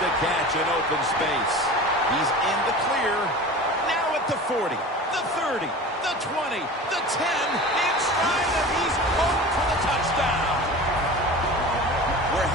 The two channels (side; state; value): both; normal; correlation 0.36